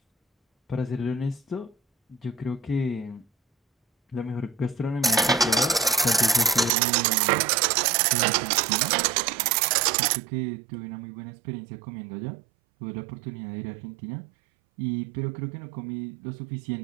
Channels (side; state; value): left; drops out; at 6.7 s